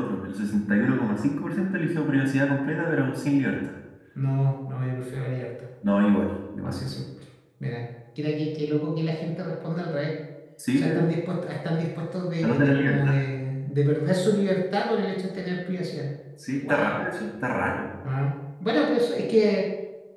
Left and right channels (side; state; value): both; identical; correlation 1.00